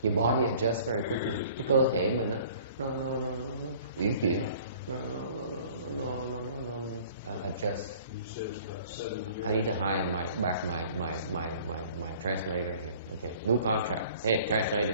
Your body adjusts very quickly. Cái cơ thể mình nó uyển chuyển. No, adjust. I need to hire my translator here. Okay, new contract. Hey,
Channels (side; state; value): both; inverted; correlation -0.51